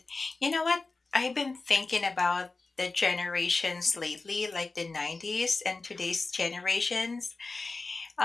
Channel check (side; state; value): right; quieter; 3.7 dB